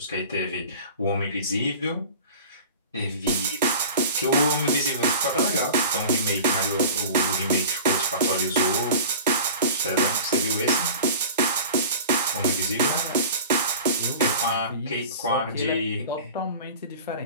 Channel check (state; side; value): inverted; both; correlation -0.37